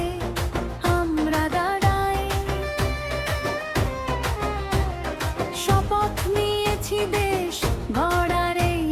আমরা দাঁড়াই, শপথ নিয়েছি দেশ গড়ার এই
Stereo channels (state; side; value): identical; both; correlation 1.00